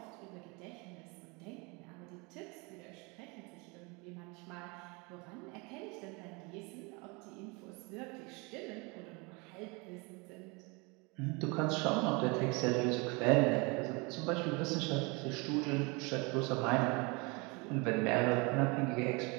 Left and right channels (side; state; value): left; quieter; 28.6 dB